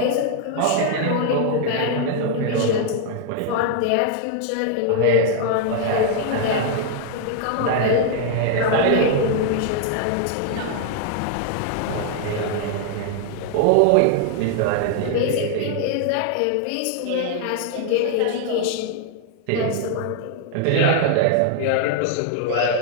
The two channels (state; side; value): different; both; correlation 0.00